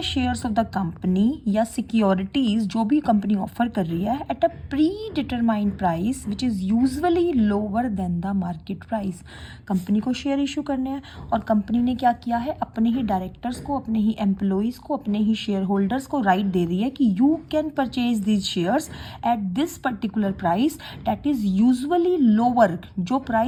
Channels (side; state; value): both; identical; correlation 1.00